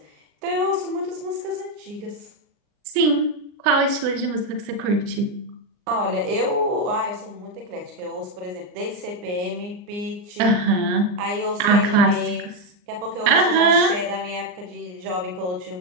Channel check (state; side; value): late; left; 39 ms